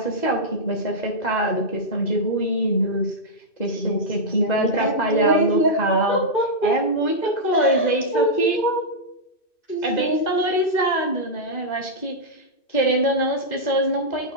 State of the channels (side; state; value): right; late; 2.6 ms